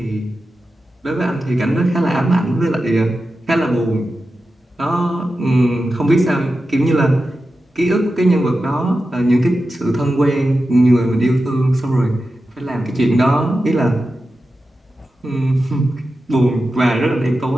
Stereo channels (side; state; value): both; normal; correlation 0.92